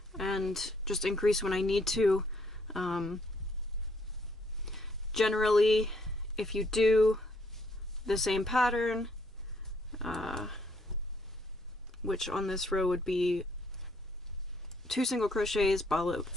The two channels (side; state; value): both; normal; correlation 0.69